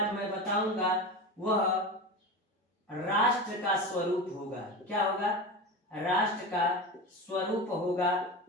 मैं बताऊंगा वह राष्ट्र का स्वरूप होगा। क्या होगा? राष्ट्र का स्वरूप होगा।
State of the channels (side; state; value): both; normal; correlation 0.25